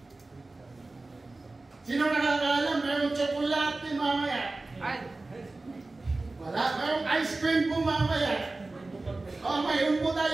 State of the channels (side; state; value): left; quieter; 3.2 dB